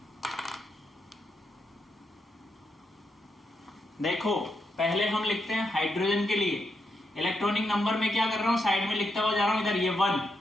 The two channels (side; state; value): both; normal; correlation 0.82